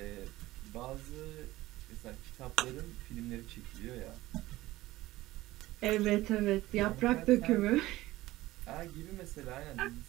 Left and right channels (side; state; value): left; quieter; 17.3 dB